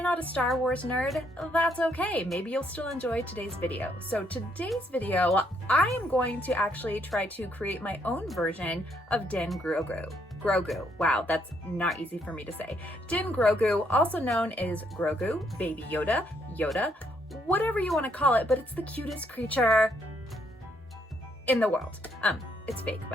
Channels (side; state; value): both; normal; correlation 0.72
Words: not a Star Wars nerd, that's okay. Maybe you'll still enjoy today's video. So today's video, I am going to actually try to create my own version of Din Grogu. Grogu. Wow, that's not easy for me to say. Din Grogu, also known as Grogu, Baby Yoda, Yoda, whatever you want to call it, but it's the cutest creature in the world. It's fake,